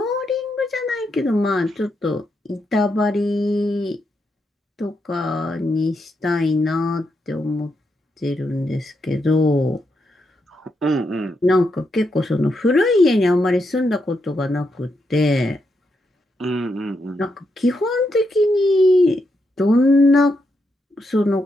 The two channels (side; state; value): both; normal; correlation 0.82